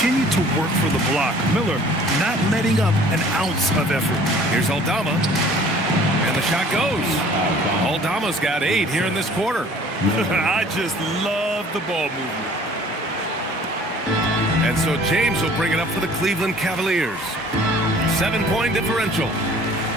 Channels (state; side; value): normal; both; correlation 0.51